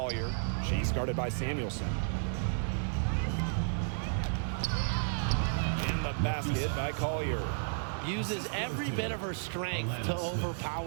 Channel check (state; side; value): silent; left; digital silence